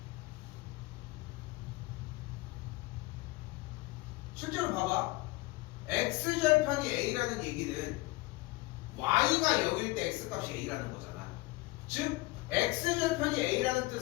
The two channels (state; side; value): quieter; right; 21.7 dB